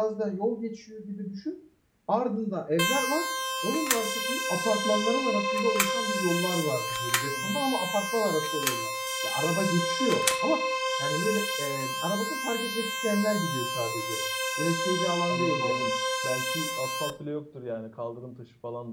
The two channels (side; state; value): both; identical; correlation 1.00